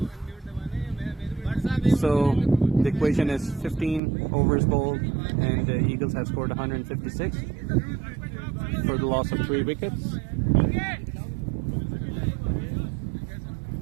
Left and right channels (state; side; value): drops out; left; at 4.0 s